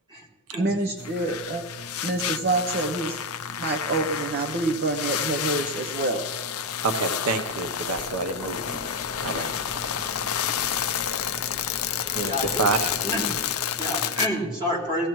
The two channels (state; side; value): normal; both; correlation 0.07